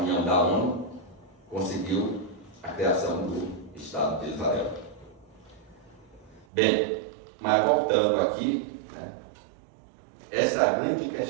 da ONU, conseguiu a criação do Estado de Israel. Bem, mas voltando aqui, né, essa é a grande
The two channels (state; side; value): drops out; left; at 6.5 s